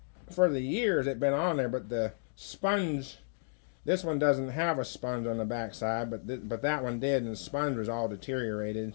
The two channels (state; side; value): silent; right; digital silence